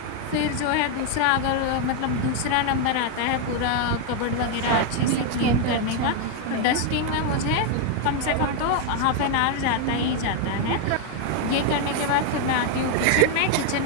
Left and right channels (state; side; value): different; both; correlation 0.01